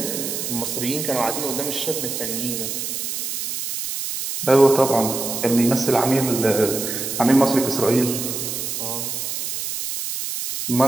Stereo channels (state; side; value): noise; right; hiss, 4 dB below the sound